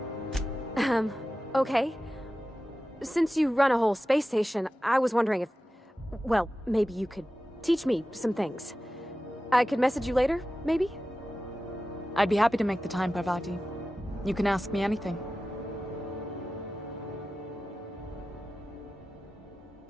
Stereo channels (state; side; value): normal; both; correlation 0.94